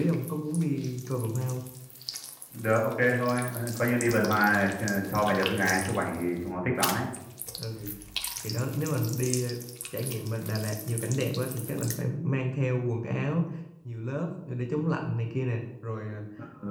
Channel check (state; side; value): identical; both; correlation 1.00